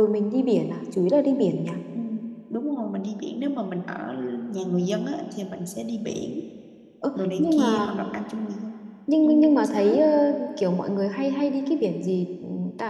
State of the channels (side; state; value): both; identical; correlation 1.00